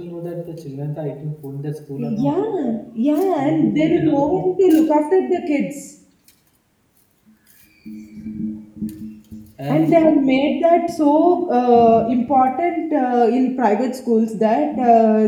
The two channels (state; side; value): identical; both; correlation 1.00